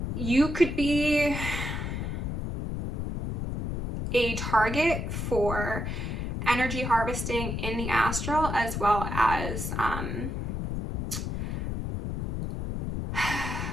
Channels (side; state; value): left; noise; rumble, 3 dB below the sound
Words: you could be a target for energy harvesting in the astral, as well as